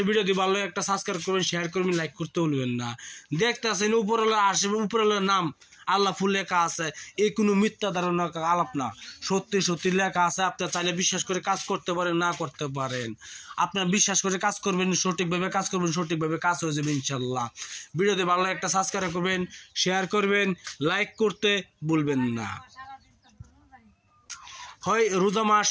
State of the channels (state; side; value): identical; both; correlation 1.00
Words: ভিডিও দিয়ে ভালো একটা সাবস্ক্রাইব করবেন, শেয়ার করবেন, লাইক করতে ভুলবেন না। দেখতেছেন উপরওয়ালা আসবে, উপরওয়ালার নাম আল্লাহ ফুল লেখা আছে, এই কোনো মিথ্যা ধারণা আলাপ না, সত্যি সত্যি লেখা আছে। আপনার চাইলে বিশ্বাস করে কাজ করতে পারেন, না করতে পারেন। আপনার বিশ্বাস করে কাজ করবেন, সঠিকভাবে কাজ করবেন, সঠিকভাবে কাজ হয়ে যাবে ইনশাল্লাহ। ভিডিওতে ভালো একটা সাবস্ক্রাইব করবেন, শেয়ার করবেন, লাইক করতে ভুলবেন না। হয় রোজা মাস